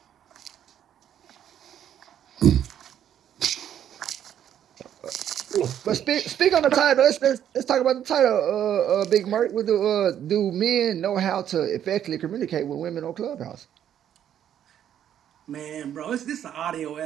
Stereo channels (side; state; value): left; quieter; 10.0 dB